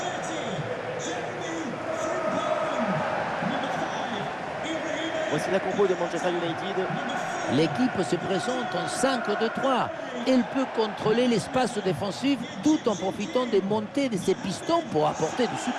Voici la compo de Manchester United. L'équipe se présente en 5-2-3. Elle peut contrôler l'espace défensif tout en profitant des montées de ses pistons pour apporter du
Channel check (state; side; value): identical; both; correlation 1.00